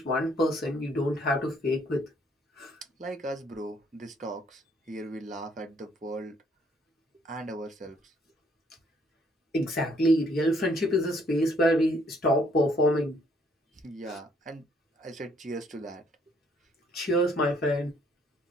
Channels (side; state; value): both; normal; correlation 0.65